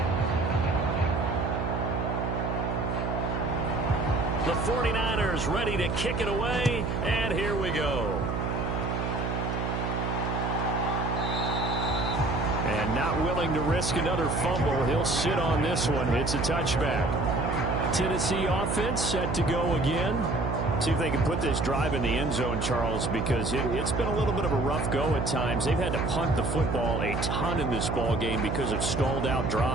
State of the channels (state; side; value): noise; right; hum, 1 dB below the sound